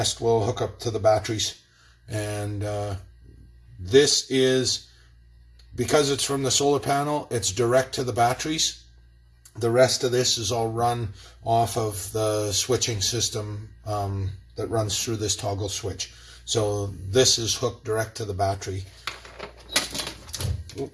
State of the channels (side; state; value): both; identical; correlation 1.00